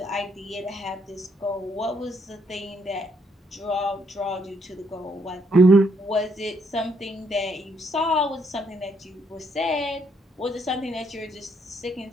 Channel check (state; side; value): normal; both; correlation 0.72